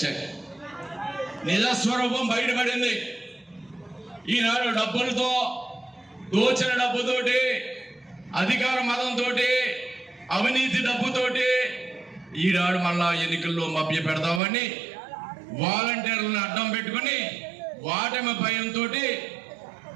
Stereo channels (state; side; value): drops out; left; at 14.4 s